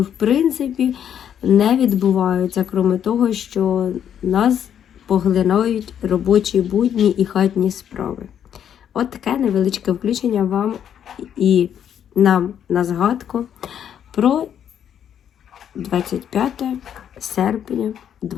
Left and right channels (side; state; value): right; quieter; 9.2 dB